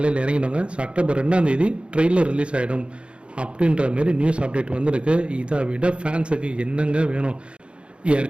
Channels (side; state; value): left; late; 0.057 ms